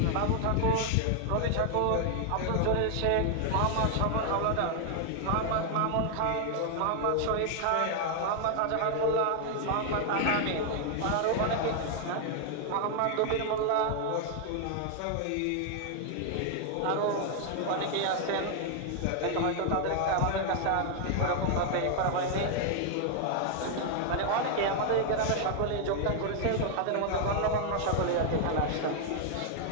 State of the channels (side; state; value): both; different; correlation 0.00